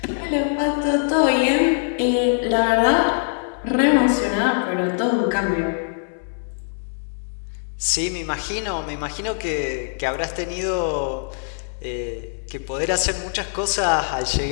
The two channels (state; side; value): silent; right; 64 dB below the other